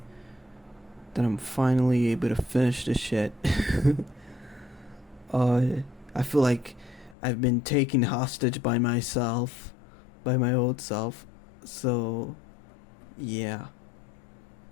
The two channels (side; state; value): right; drops out; at 7.2 s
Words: that I'm finally able to finish this shit. I feel like I've been taken hostage by myself, by my old self. So, yeah.